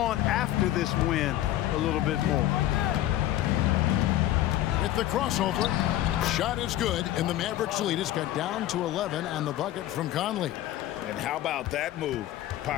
after this win a little bit more. With the crossover, shot is good, and the Mavericks lead is cut down to 11 on the bucket from Conley. And how about that move?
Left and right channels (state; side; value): quieter; right; 13.8 dB